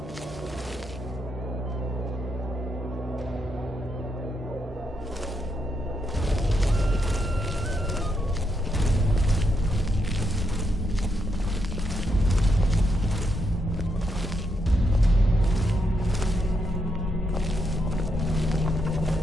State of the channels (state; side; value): normal; both; correlation 0.80